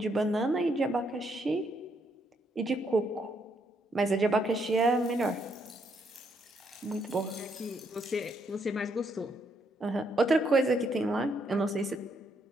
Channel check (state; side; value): normal; both; correlation 0.74